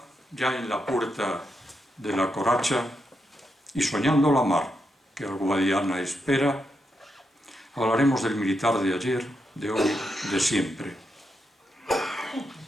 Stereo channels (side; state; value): both; normal; correlation 0.84